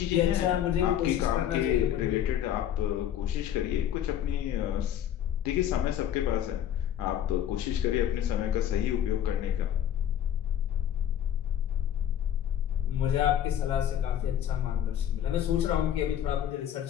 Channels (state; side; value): quieter; right; 10.2 dB